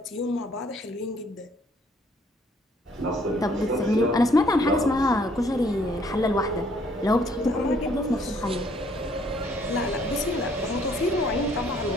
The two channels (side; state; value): both; normal; correlation 0.64